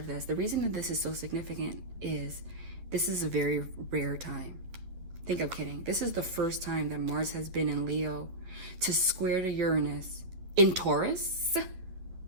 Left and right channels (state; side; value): late; left; 11 ms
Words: this. The reason that this is so significant is this is a very rare time. Think I'm kidding. This is the first time that Mars has been in Leo to square to Uranus in Taurus,